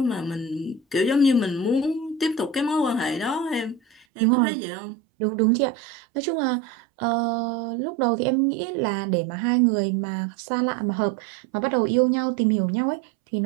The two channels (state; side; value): drops out; left; at 4.0 s